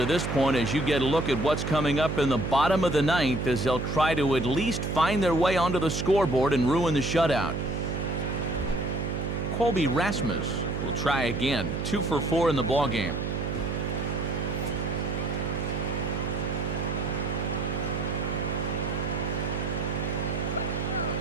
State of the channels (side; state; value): right; noise; hum, 2 dB below the sound